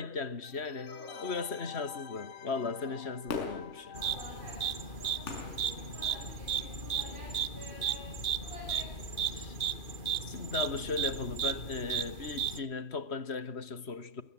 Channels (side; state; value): right; late; 3.1 ms